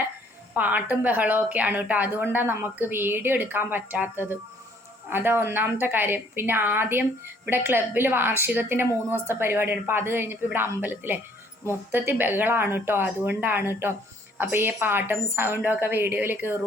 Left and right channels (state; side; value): normal; both; correlation 0.62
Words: പാട്ടും ബഹളവും ഒക്കെയാണ് കേട്ടോ. അതുകൊണ്ടാണ് നമുക്ക് വീഡിയോ എടുക്കാൻ പറ്റാത്തത്. അതാ ഒന്നാമത്തെ കാര്യം. പിന്നെ ആദ്യം ഇവിടെ ക്ലബിൽ വാർഷികത്തിൻ്റെ 3 ദിവസത്തെ പരിപാടിയാണ്. അപ്പോൾ അത് കഴിഞ്ഞപ്പോൾ ഇവിടെ അമ്പലത്തിലെ മൊത്തത്തിൽ ബഹളമാണ് കേട്ടോ. അതുകൊണ്ടാണ് കേട്ടോ. അപ്പോൾ ഈ പാട്ടും സൗണ്ടും ഒക്കെ വീഡിയോയിൽ